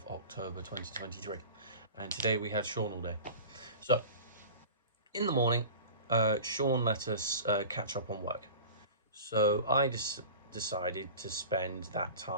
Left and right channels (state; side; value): inverted; both; correlation -0.37